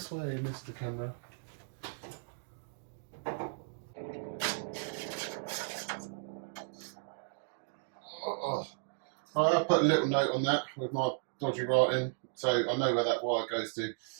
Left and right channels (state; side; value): silent; left; digital silence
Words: way, Mr. Camera. Oh. I'll put a little note on that with my dodgy writing, so I know where that wire goes to.